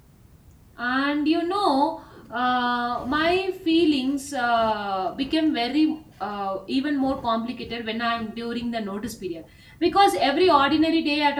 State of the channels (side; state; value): both; identical; correlation 1.00